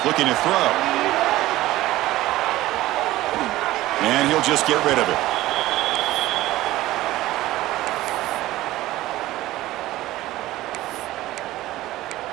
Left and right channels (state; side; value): quieter; left; 16.4 dB